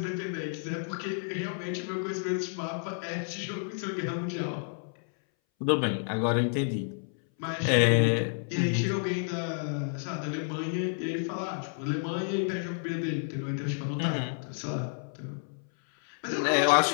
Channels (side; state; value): right; silent; 58 dB below the other